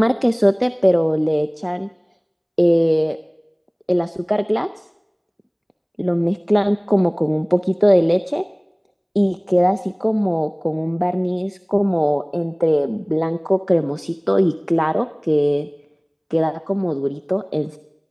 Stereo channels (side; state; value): both; identical; correlation 1.00